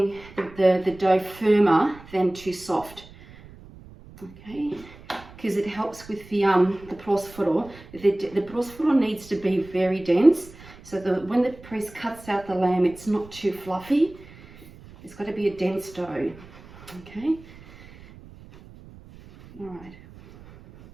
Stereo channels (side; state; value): right; noise; rumble, 20 dB below the sound